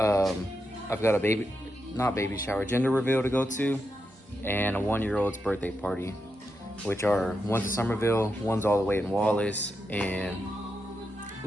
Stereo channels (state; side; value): normal; both; correlation 0.86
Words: got a not baby shower, gender reveal to go to, and a 1-year-old's birthday party, which are one's in Somerville, one's all the way in Wallace, and a